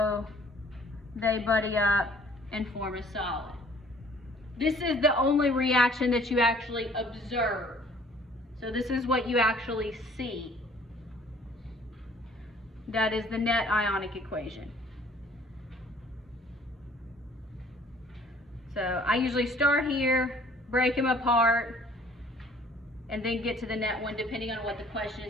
they buddy up and form a solid. This is the only reaction that you actually observe. So this is what you actually see. That is the net ionic equation. So I usually start here, break them apart, and then get to the net one depending on what the question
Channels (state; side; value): normal; both; correlation 0.55